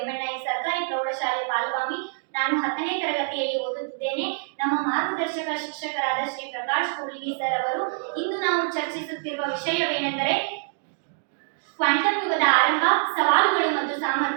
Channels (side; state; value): left; silent; digital silence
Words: ಸರ್ಕಾರಿ ಪ್ರೌಢಶಾಲೆ ಪಾಲ್ಗಾಮಿ. ನಾನು 10ನೇ ತರಗತಿಯಲ್ಲಿ ಓದುತ್ತಿದ್ದೇನೆ. ನಮ್ಮ ಮಾರ್ಗದರ್ಶಕ ಶಿಕ್ಷಕರಾದ ಶ್ರೀ ಪ್ರಕಾಶ್ ಕೂಡ್ಲಿಗಿ ಸರ್ ಅವರು ಇಂದು ನಾವು ಚರ್ಚಿಸುತ್ತಿರುವ ವಿಷಯವೇನೆಂದರೆ ಕ್ವಾಂಟಮ್ ಯುಗದ ಆರಂಭ, ಸವಾಲುಗಳು ಮತ್ತು